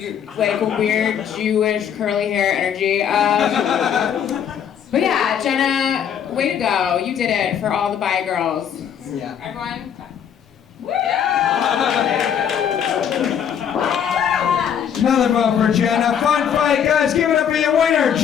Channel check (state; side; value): quieter; right; 8.5 dB